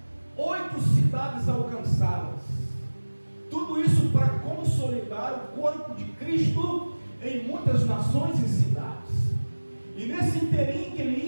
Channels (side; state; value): both; inverted; correlation -1.00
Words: 8 cidades alcançadas. Tudo isso para consolidar o corpo de Cristo em muitas nações e cidades. E nesse inteirinho que ele